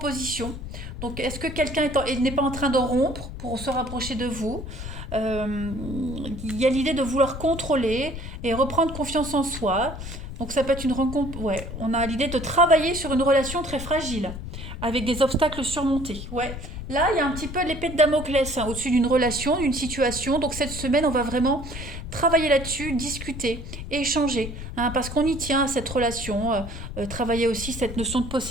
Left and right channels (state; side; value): noise; left; rumble, 9 dB below the sound